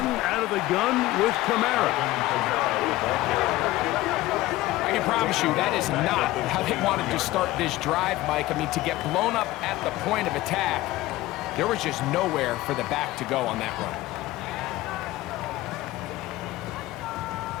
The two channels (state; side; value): quieter; right; 17.3 dB